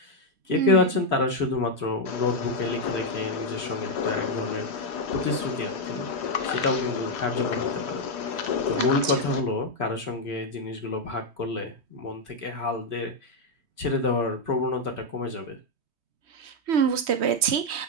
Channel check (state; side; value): late; left; 3.2 ms